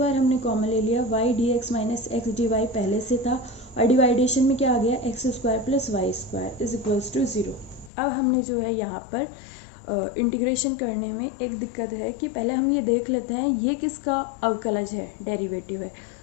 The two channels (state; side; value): drops out; right; at 7.9 s